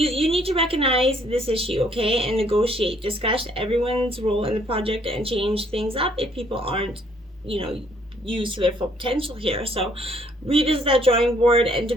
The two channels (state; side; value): normal; both; correlation 0.65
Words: need to recognize this issue, okay, and negotiate, discuss everyone's role in the project, and change things up if people aren't, used to their full potential here. So revisit that drawing board and